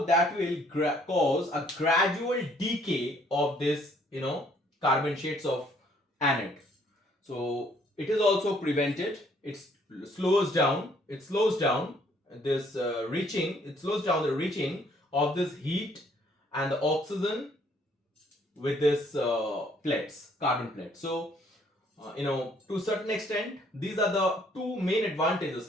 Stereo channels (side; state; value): both; normal; correlation 0.64